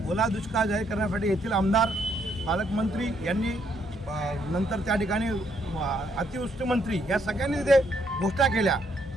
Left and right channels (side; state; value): both; normal; correlation 0.72